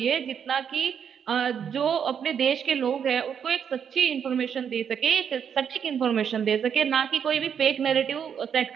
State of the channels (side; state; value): left; quieter; 7.8 dB